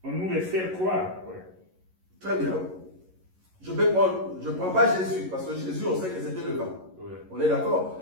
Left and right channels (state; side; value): late; left; 11 ms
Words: nous les fait croire? Ouais. Très bien. Je ne prends pas Jésus, parce que Jésus, on sait que c'était le vin. Ouais. On est d'accord?